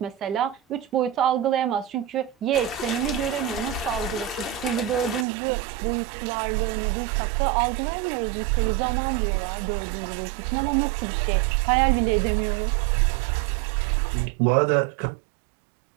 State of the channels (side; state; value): left; drops out; at 5.2 s